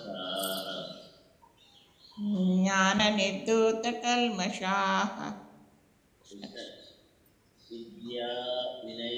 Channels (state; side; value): identical; both; correlation 1.00